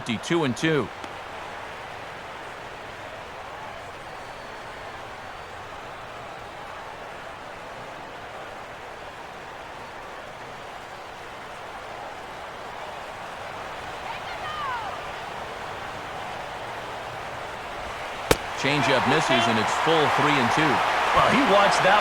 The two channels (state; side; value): identical; both; correlation 1.00